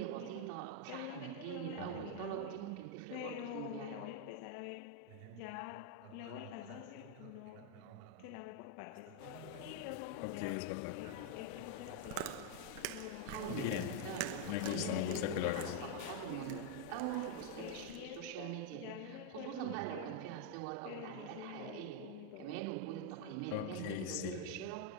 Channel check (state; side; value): different; both; correlation 0.00